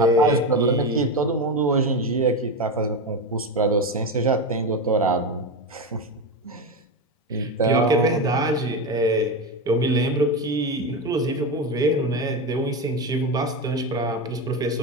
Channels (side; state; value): both; normal; correlation 0.17